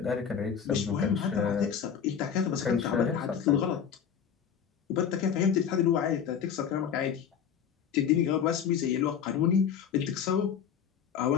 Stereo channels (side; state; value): right; quieter; 7.9 dB